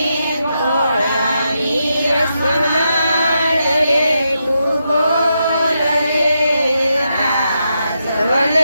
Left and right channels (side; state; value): both; inverted; correlation -0.84